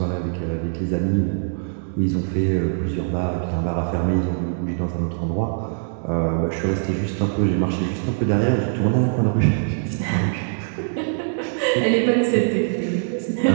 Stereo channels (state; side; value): silent; left; digital silence